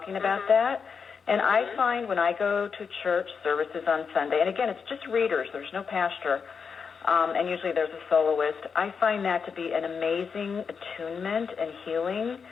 about that, And I find when I go to church services on Sunday, and again, it's just readers, there's no pastor, and usually there's a soloist, I find that to be an amazing attunement and healing.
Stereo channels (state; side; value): quieter; right; 5.9 dB